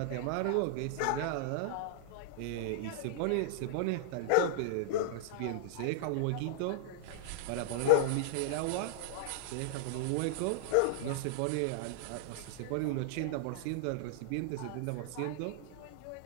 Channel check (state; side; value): different; both; correlation -0.01